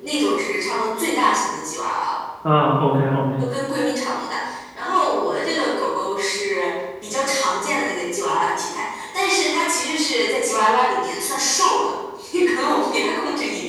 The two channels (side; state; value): both; identical; correlation 1.00